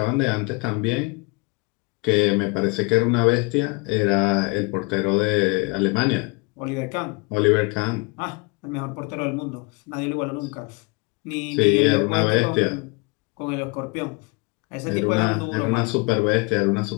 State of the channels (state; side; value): quieter; right; 28.7 dB